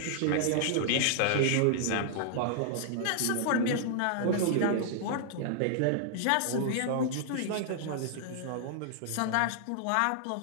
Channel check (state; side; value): different; both; correlation -0.01